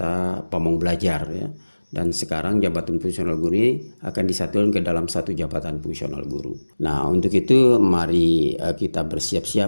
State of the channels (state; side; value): inverted; both; correlation -1.00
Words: pamong belajar ya. Dan sekarang jabatan fungsional guru ini akan disatukan ke dalam satu jabatan fungsional guru. Nah, untuk itu mari kita